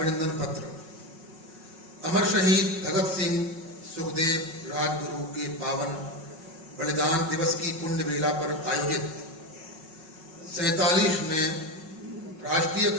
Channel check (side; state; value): left; late; 5.4 ms